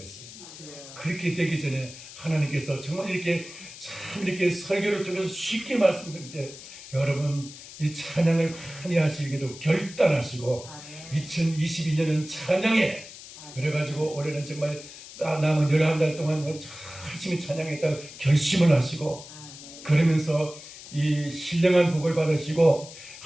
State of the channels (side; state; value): left; noise; hiss, 15 dB below the sound